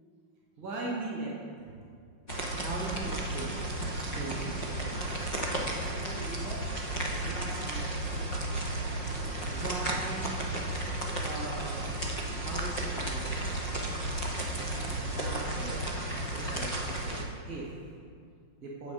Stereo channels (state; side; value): late; right; 5.5 ms